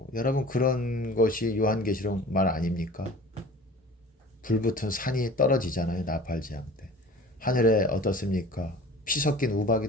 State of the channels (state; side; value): normal; both; correlation 0.43